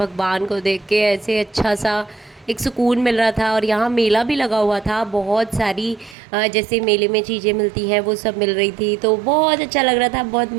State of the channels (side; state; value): left; drops out; at 6.2 s